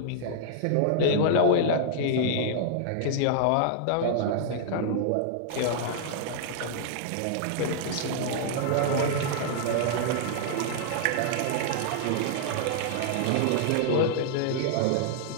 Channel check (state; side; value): different; both; correlation -0.01